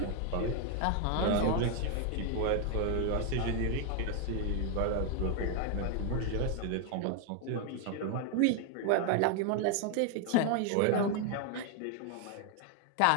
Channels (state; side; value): different; both; correlation 0.00